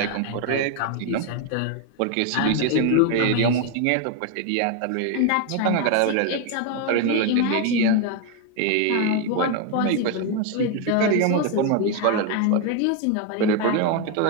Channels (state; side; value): different; both; correlation 0.01